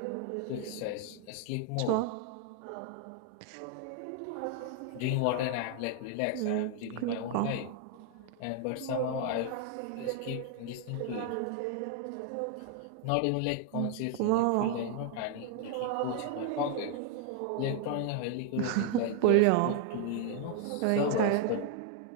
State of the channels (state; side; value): different; both; correlation 0.00